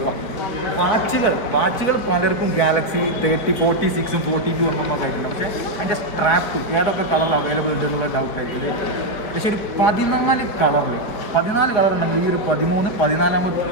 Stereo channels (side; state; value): right; late; 4.7 ms